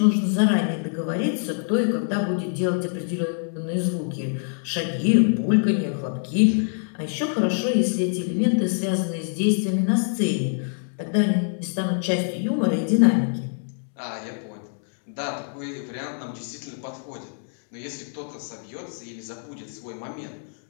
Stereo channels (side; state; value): right; silent; 62 dB below the other